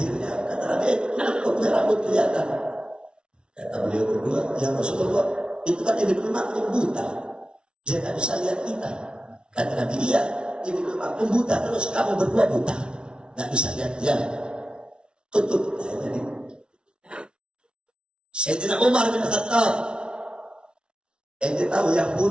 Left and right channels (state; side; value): late; left; 0.056 ms